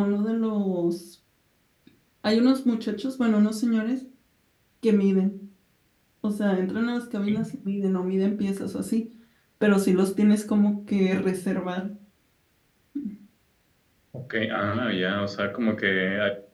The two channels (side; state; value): both; identical; correlation 1.00